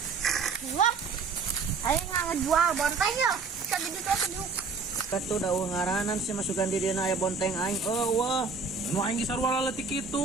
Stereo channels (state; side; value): quieter; left; 4.7 dB